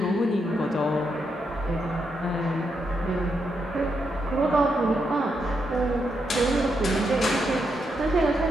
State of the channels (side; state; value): both; normal; correlation 0.82